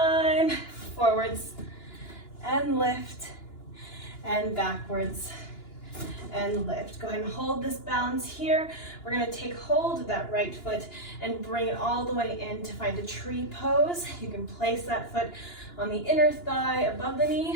forwards, and lift, and backwards, and lift. Go ahead and hold this balance here. We're gonna take hold of that right foot and bring it all the way in to find a tree pose. You can place that foot on the inner thigh above the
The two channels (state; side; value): late; right; 2.9 ms